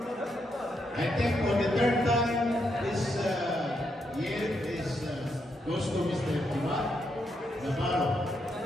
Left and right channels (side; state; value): both; normal; correlation 0.80